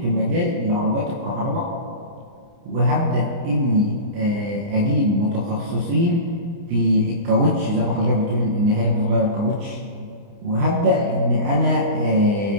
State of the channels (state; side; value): late; left; 29 ms